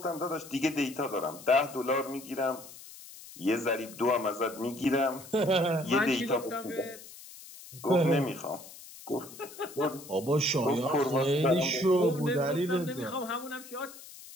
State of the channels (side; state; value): left; noise; hiss, 17 dB below the sound